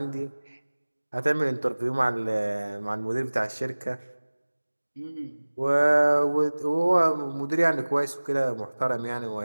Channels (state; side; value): inverted; both; correlation -1.00